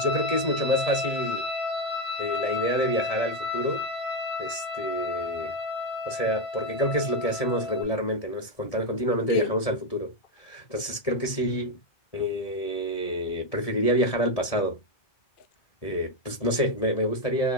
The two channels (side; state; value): right; late; 1.7 ms